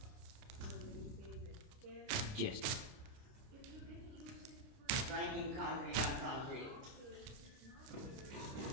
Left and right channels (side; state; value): left; late; 30 ms